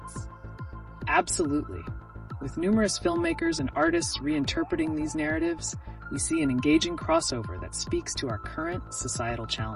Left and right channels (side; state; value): both; identical; correlation 1.00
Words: Absolutely. With numerous filmmakers and artists reinterpreting these narratives, we see an engaging crossover that speaks to our current societal